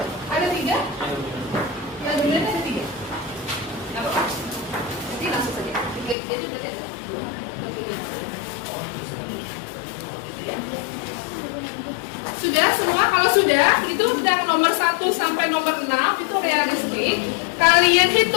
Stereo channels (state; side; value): drops out; right; at 6.2 s